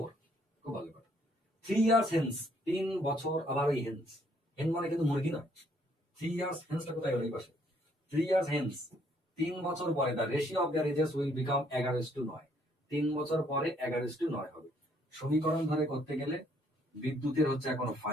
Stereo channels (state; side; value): normal; both; correlation 0.67